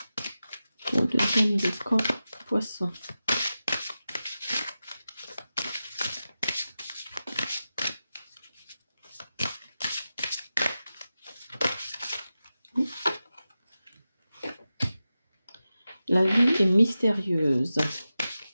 Pour le deuxième décan poisson. La vie est mystérieuse.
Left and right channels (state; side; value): inverted; both; correlation -0.93